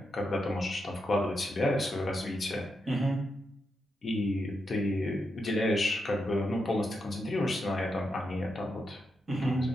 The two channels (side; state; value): both; normal; correlation 0.85